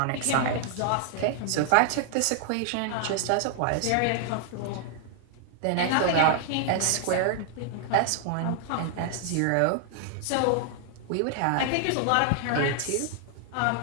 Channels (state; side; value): different; both; correlation 0.00